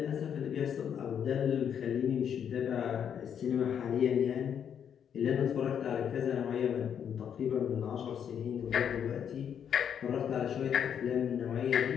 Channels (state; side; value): quieter; right; 8.4 dB